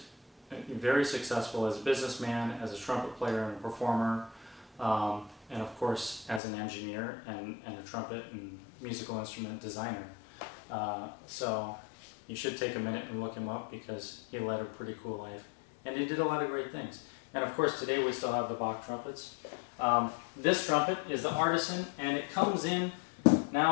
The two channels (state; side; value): drops out; right; at 6.4 s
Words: very successful as a businessman, as a trumpet player and a performer, and of course as an engineer and a trumpet and musical instrument designer. So you should take a minute and look him up, because he led a pretty cool life. And he did a lot of great things. And of course today we still have the Bach trumpets. This trumpet is the Artisan, and it comes in